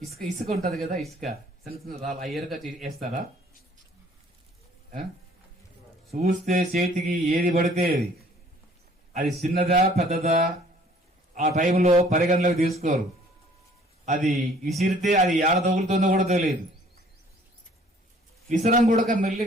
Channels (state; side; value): normal; both; correlation 0.57